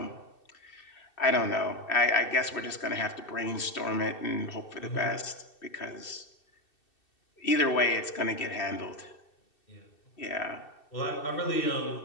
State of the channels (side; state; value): right; late; 2.7 ms